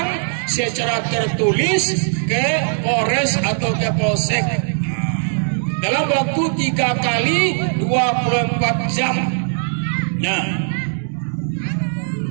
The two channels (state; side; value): silent; left; digital silence